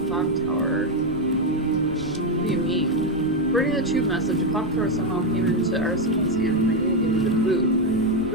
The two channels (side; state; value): right; noise; rumble, 15 dB below the sound